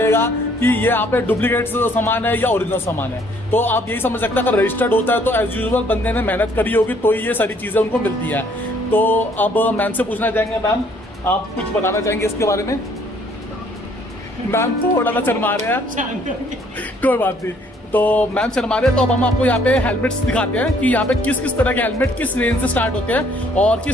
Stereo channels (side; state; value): both; normal; correlation 0.63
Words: कि ये यहाँ पे डुप्लीकेट सामान है या ओरिजिनल सामान है। तो आप यही समझ सकते हैं अगर रजिस्टर्ड होता है तो एज यूजुअल बंदे ने मेहनत करी होगी तो ये सारी चीज़ें उनको मिलती है। तो अब मैम से पूछना चाहेंगे, मैम आप कुछ बताना चाहेंगे इसके बारे में? मैम थोड़ा सा शर्मा रहे हैं, कोई बात नहीं। तो मैम शर्मा रहे हैं, तो अब हम आपको यहाँ पे हेलमेट्स दिखाते हैं कि यहाँ पे किस किस तरह के हेलमेट किस रेंज से स्टार्ट होते हैं और